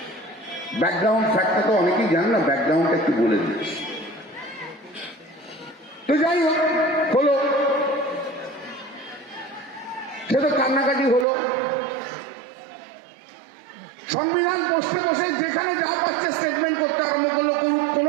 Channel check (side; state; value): left; drops out; at 11.2 s